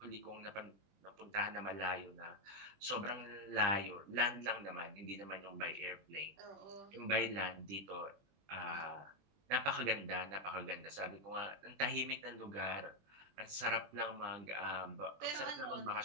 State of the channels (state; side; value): late; left; 20 ms